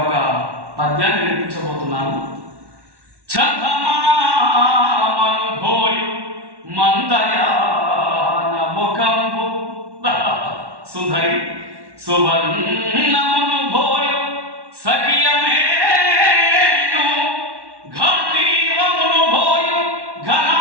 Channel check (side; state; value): left; late; 1.1 ms